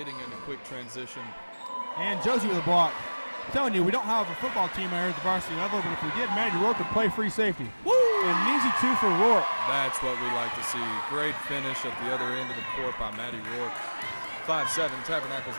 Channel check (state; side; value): inverted; both; correlation -1.00